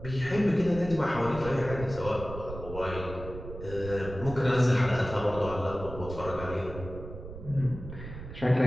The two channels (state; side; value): noise; right; rumble, 11 dB below the sound